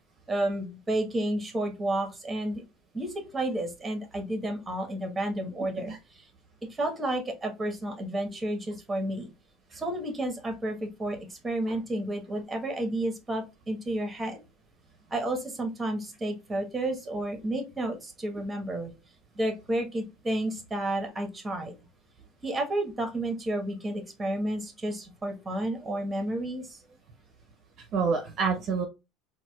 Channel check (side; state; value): both; normal; correlation 0.77